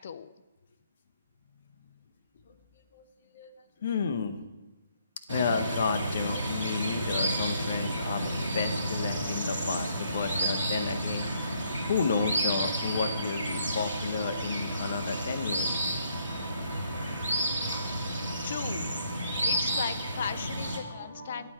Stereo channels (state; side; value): inverted; both; correlation -0.69